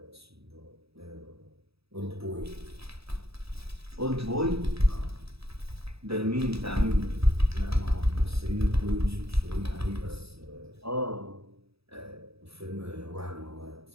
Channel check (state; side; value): late; left; 0.77 ms